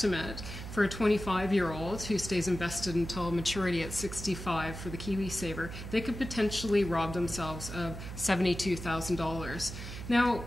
for a 25-year-old who stays invested until maturity at 65 for the KiwiSaver, they could potentially rob themselves of $72,000. Now,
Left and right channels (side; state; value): right; noise; hum, 9 dB below the sound